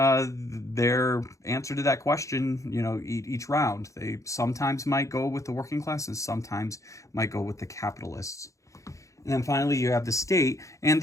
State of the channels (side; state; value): right; late; 0.15 ms